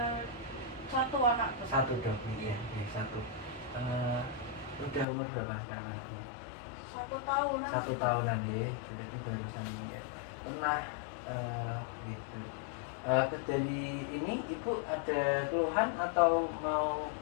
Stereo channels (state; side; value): drops out; right; at 5.1 s